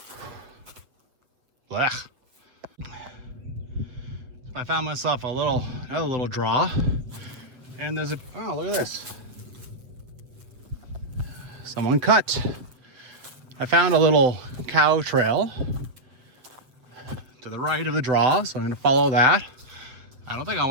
Blech. I found myself another little draw, and there's oh, look at this. Someone cut. I found a little cow trail to the right of the draw, so I'm gonna follow that. I don't think I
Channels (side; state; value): left; late; 7.7 ms